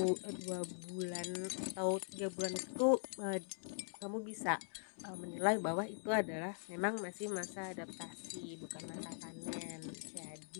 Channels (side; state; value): right; silent; digital silence